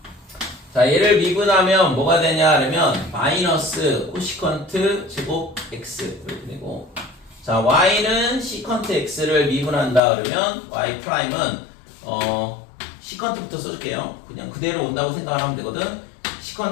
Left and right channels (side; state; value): right; drops out; at 10.0 s